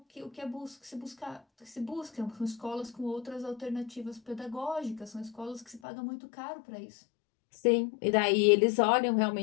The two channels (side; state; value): right; drops out; at 5.8 s